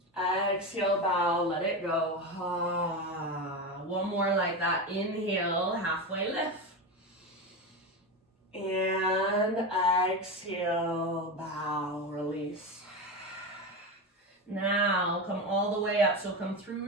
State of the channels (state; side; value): normal; both; correlation 0.19